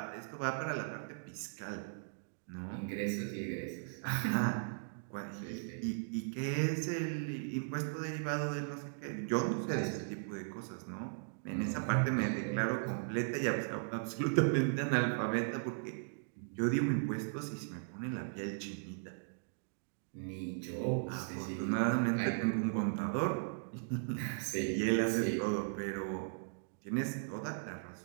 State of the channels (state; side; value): silent; left; digital silence